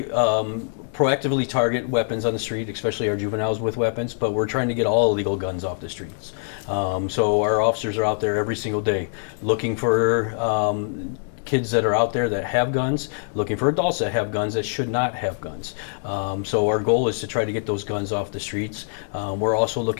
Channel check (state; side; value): silent; right; digital silence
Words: proactively target weapons on the street, especially our juveniles with weapons, but we're trying to get all illegal guns off the streets. So our officers are out there every single day looking for kids that are out there that have guns, looking for adults that have guns that should not have guns. So our goal is to try to get those guns off the streets. We're also